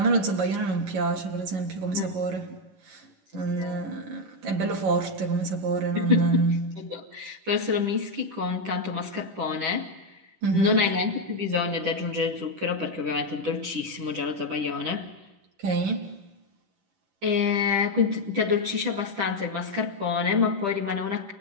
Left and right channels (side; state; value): left; late; 10 ms